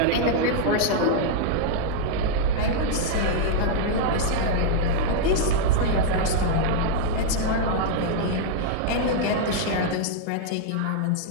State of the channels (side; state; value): both; different; correlation -0.01